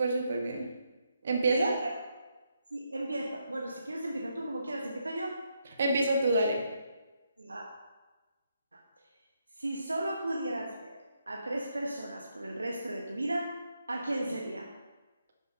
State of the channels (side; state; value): both; inverted; correlation -0.80